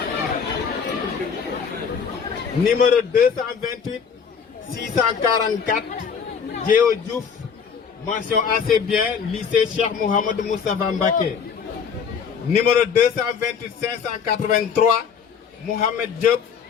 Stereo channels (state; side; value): quieter; right; 6.6 dB